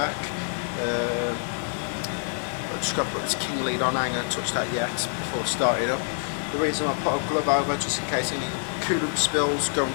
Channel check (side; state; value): right; silent; digital silence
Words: I've just got to put this king lead on, I ain't going to touch that yet before starting up. The reason I put a glove over, just in case any coolant spills go